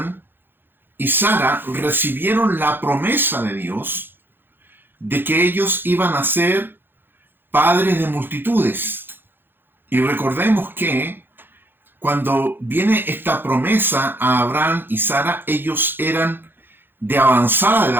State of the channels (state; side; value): late; left; 0.10 ms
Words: y Sara recibieron la promesa de Dios de que ellos iban a ser padres de multitudes. Y recordemos que cuando viene esta promesa a Abraham y Sara, ellos eran de avanzada